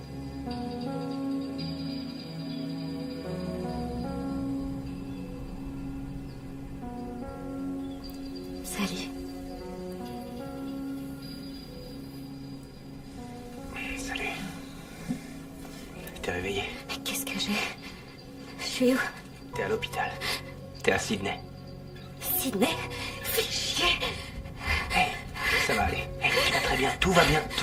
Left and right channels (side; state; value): both; identical; correlation 1.00